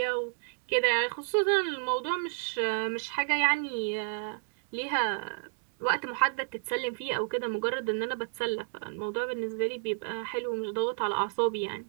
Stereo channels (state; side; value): silent; left; 57 dB below the other